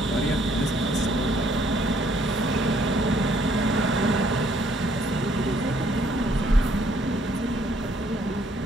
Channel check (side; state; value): both; normal; correlation 0.65